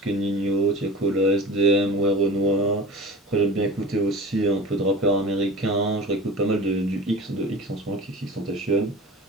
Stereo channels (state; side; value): normal; both; correlation 0.35